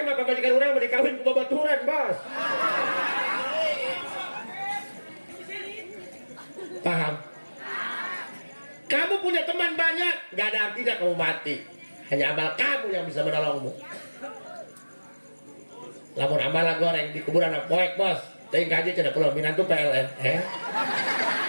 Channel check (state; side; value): inverted; both; correlation -1.00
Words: mah pamajikan urang mah dikawin ku babaturan, bos. Paham? Kamu punya teman banyak, gak ada artinya kamu mati. Hanya amal kamu yang bisa menolongmu. Lamun amal goreng di kuburan poek, bos. Teuing kaji cenah pulau minantu PLN.